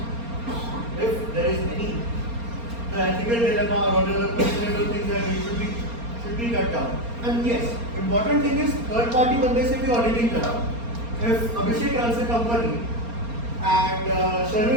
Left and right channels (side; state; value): left; late; 4.3 ms